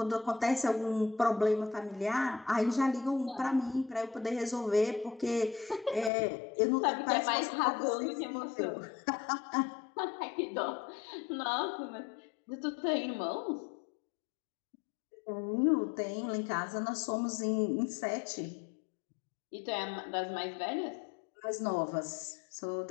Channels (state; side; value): drops out; right; at 6.1 s